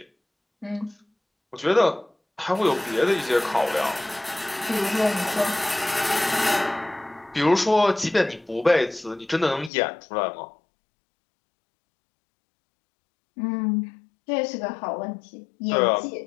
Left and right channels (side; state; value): right; drops out; at 9.7 s